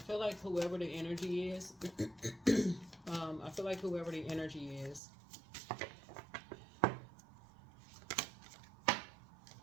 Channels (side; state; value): left; drops out; at 5.0 s